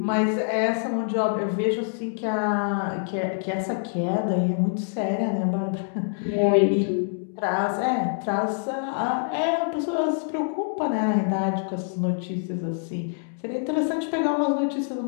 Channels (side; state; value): right; silent; digital silence